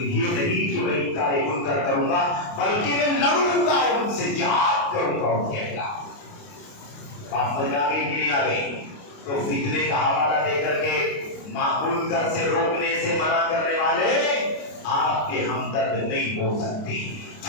نہیں کہ میں انکار منکر کروں گا بلکہ میں لڑوں گا ان سے، جہاد کروں گا ان کے خلاف۔ بات سمجھ آ گئی کہ نہیں آ گئی؟ تو فتنے کا حوالہ دے کر کے منکر سے روکنے سے منع کرنے والے آپ کے ہمدرد نہیں ہو سکتے۔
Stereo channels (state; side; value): late; right; 28 ms